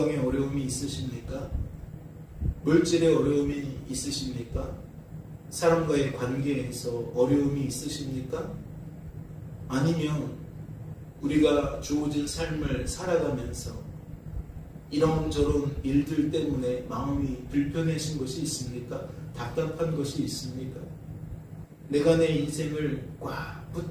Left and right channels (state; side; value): identical; both; correlation 1.00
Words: 어려움이 있으십니까? 물질에 어려움이 있으십니까? 사람과의 관계에서 어려움이 있으십니까? 아니면 우리가 주어진 삶을 살아가면서 이런저런 일들 때문에 마음이 불편해진 것이 있습니까? 답답한 것이 있습니까? 내가 내 인생을 꽉